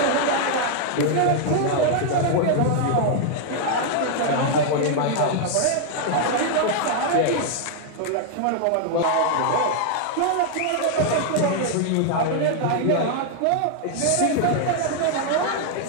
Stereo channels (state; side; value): different; both; correlation 0.00